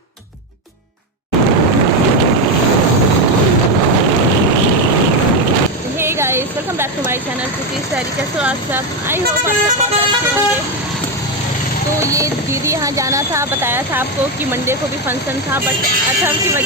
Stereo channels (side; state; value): both; normal; correlation 0.10